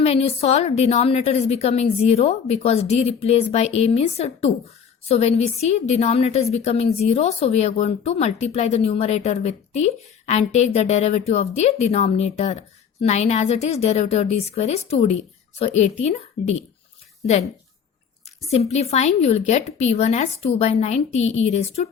when you solve, denominator is becoming 0 because d replaced by a means 2. So when we see denominator is becoming 0, so we are going to multiply the numerator with t and take the derivative of the denominator. 9 as it is, derivative of d square is 2d. So 18d. Then simplifying, you will get p1 as 2 by 9 t e raised to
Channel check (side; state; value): right; quieter; 7.1 dB